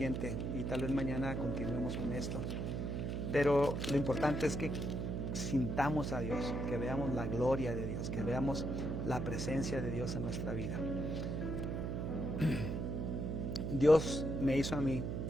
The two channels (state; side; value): noise; right; hum, 2 dB below the sound